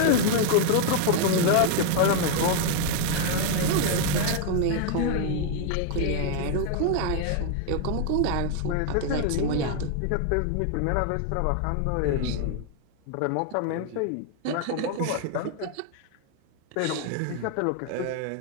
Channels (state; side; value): different; both; correlation 0.00